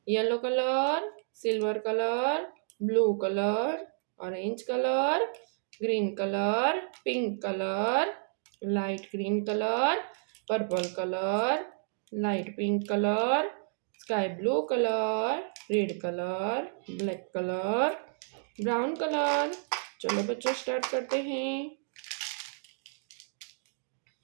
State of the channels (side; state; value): left; silent; digital silence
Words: Yellow colour, silver colour, blue colour, orange colour, green colour, pink colour, light green colour, purple colour, light pink colour, sky blue colour, red colour, black colour, brown colour. चलो बच्चों, start करते हैं।